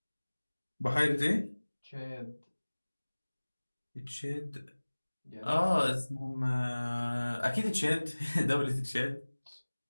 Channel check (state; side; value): inverted; both; correlation -1.00